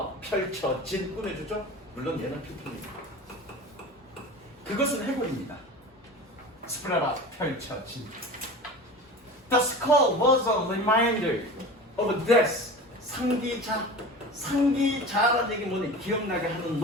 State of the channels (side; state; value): both; normal; correlation 0.34